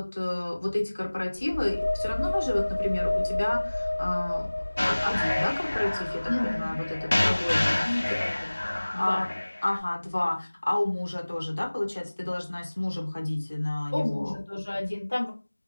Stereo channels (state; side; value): inverted; both; correlation -1.00